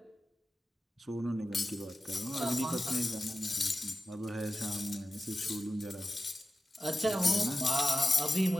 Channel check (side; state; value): both; normal; correlation 0.92